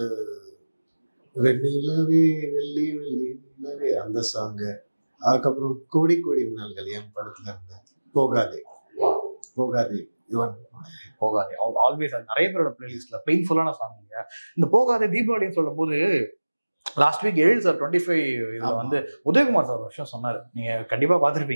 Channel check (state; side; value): inverted; both; correlation -1.00